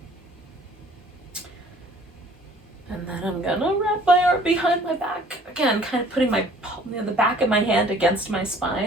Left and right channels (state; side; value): normal; both; correlation 0.54